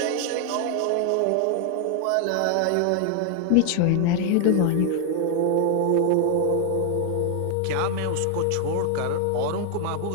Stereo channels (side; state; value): both; different; correlation 0.00